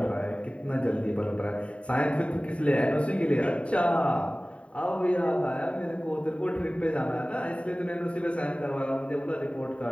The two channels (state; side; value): late; right; 0.063 ms